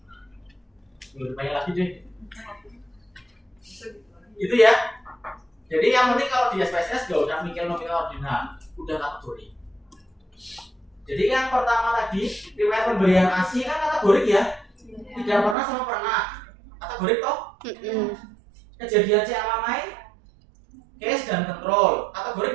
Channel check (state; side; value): drops out; left; at 15.6 s